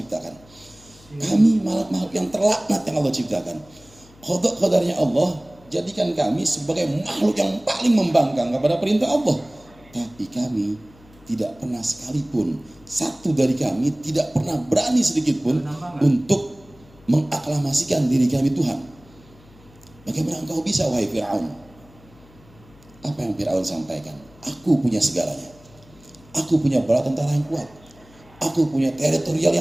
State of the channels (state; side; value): noise; left; hum, 26 dB below the sound